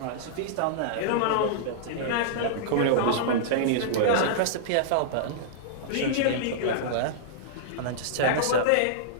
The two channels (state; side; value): different; both; correlation -0.02